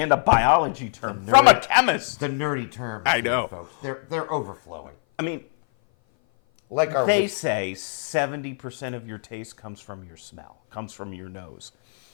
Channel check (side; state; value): right; silent; 57 dB below the other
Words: a biology term from a chemist. The nerdy terms. I know, folks. They're overflowing. I mean, like they say 70% of your taste comes from your smell, comes from your nose.